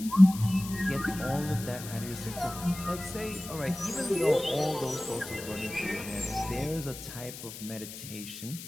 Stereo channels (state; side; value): noise; left; hiss, 12 dB below the sound